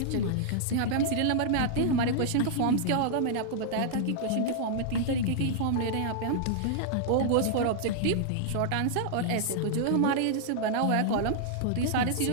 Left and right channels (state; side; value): different; both; correlation -0.01